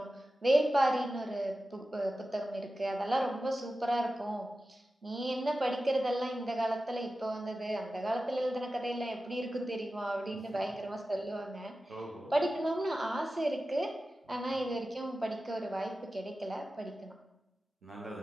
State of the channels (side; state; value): both; normal; correlation 0.94